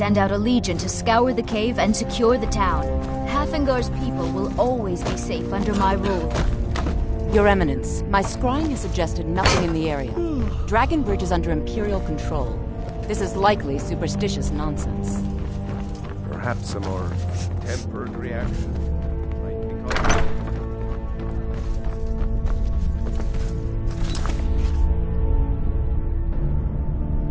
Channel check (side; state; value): both; identical; correlation 1.00